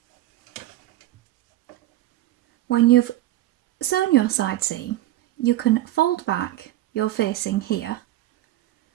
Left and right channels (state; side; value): quieter; left; 15.1 dB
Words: When you've sewn your side seam, you can fold back your facing here,